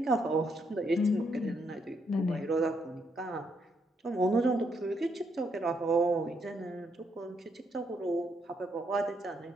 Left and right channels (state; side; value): normal; both; correlation 0.76